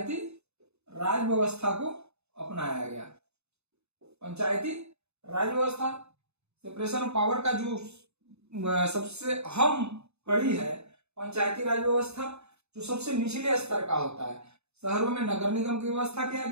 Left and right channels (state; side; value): late; left; 0.80 ms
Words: राज व्यवस्था को अपनाया गया। पंचायती राज व्यवस्था, सेपरेशन ऑफ पावर का जो सबसे अहम कड़ी है पंचायती राज व्यवस्था, जो सबसे निचले स्तर का होता है। शहरों में नगर निगम की व्यवस्था किया